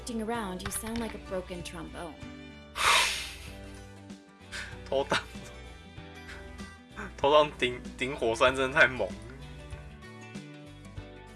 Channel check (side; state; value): both; identical; correlation 1.00